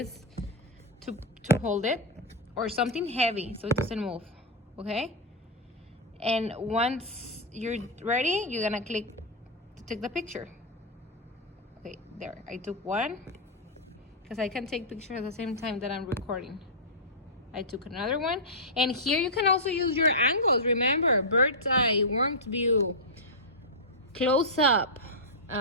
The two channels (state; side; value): normal; both; correlation -0.07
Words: to hold it, or something heavy so it doesn't move. Okay? And once you're ready, you're gonna click to take the picture. Okay, there. I took one because I can take pictures at the same time that I'm recording. I took another one. And here you can also use your angles. Remember, bird's eye, warmed view, close up.